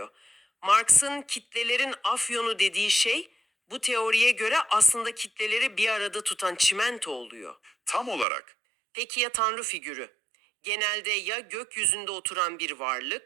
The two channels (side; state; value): left; drops out; at 8.2 s